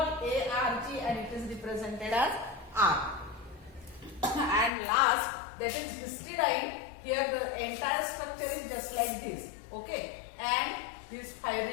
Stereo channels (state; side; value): drops out; right; at 4.7 s